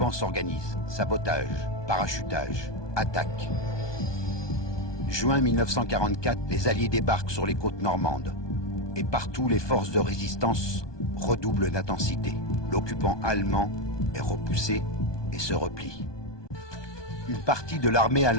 s'organise. Sabotage, parachutage, attaque. Juin 1944, les Alliés débarquent sur les côtes normandes. Et partout, les forces de résistance redoublent d'intensité. L'occupant allemand est repoussé et se replie. Une partie de l'armée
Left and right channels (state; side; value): late; right; 1.2 ms